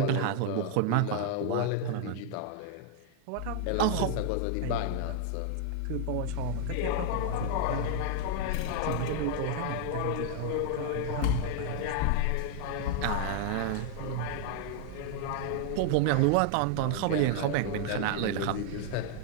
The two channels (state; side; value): different; both; correlation 0.00